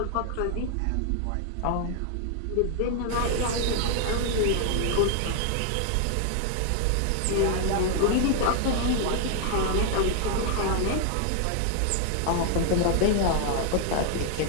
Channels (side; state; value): both; different; correlation 0.00